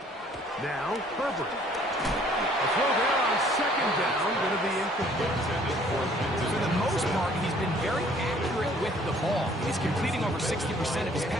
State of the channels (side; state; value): both; normal; correlation 0.58